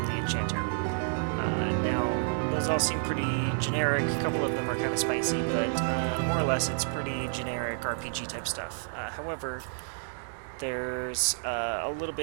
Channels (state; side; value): silent; left; digital silence